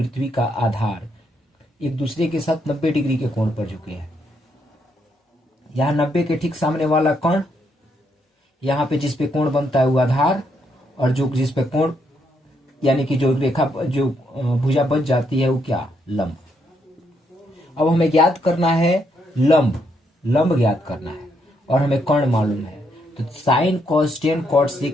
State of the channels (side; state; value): both; normal; correlation 0.76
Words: का आधार एक दूसरे के साथ 90 डिग्री के कोण पर झुके हैं। यहाँ 90 के ठीक सामने वाला कर्ण, यहाँ पे जिस पे कोण बनता है वो आधार, और जो जिस पे कोण यानी कि जो रेखा जो भुजा बच जाती है वो क्या, लंब। अब हमें ज्ञात करना है लंब ज्ञात करना है और हमें कर्ण मालूम है। तो sine cos tan cot